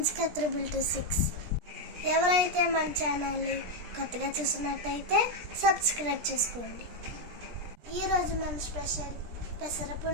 326. ఎవరైతే మన ఛానల్ని కొత్తగా చూస్తున్నట్టయితే సబ్స్క్రైబ్ చేసుకోండి. ఈరోజు మన స్పెషల్ పెసర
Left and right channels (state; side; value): late; left; 17 ms